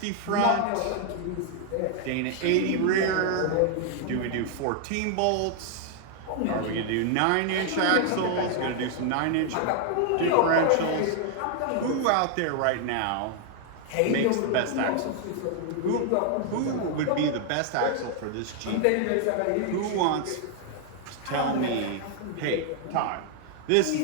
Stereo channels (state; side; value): different; both; correlation 0.00